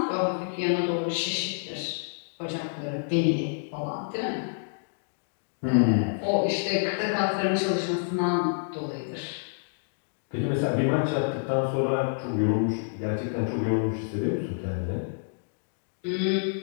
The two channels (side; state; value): right; silent; digital silence